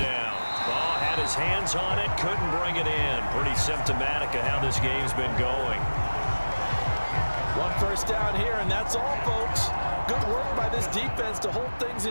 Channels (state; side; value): inverted; both; correlation -1.00